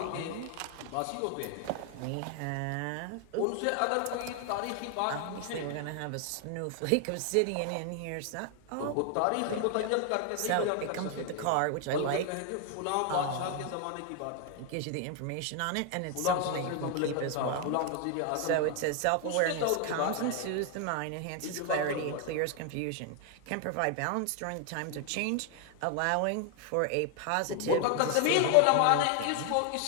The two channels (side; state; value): both; different; correlation 0.00